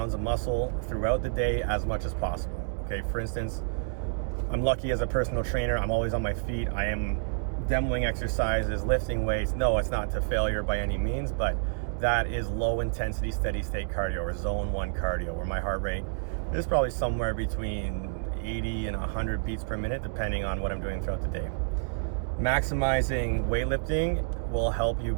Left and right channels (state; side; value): silent; left; digital silence